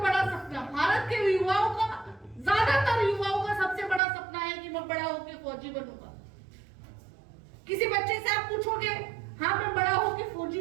बड़ा सपना, भारत के युवाओं का, ज्यादातर युवाओं का सबसे बड़ा सपना है कि मैं बड़ा होकर फौजी बनूंगा। किसी बच्चे से आप पूछोगे, हाँ मैं बड़ा होकर फौजी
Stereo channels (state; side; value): drops out; left; at 4.0 s